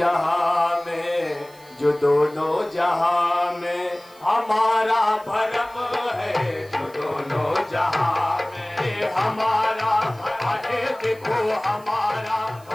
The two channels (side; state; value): right; noise; hiss, 26 dB below the sound